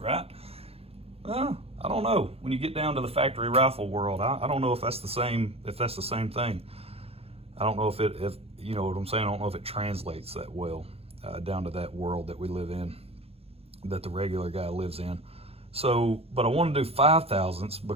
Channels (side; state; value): left; late; 0.29 ms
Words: Well, I don't know. When you get down to the factory rifle world, I don't know if that's the same. If that's the same thing, I don't know if you know what I'm saying. I don't know if it translates that well down to that world that we live in, that the regular guy lives in. So, but I want to do 5/1000ths